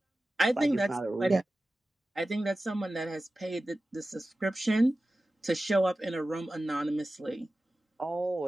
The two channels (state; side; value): normal; both; correlation 0.95